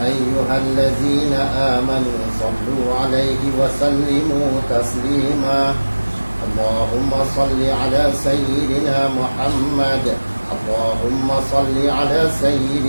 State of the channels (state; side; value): inverted; both; correlation -1.00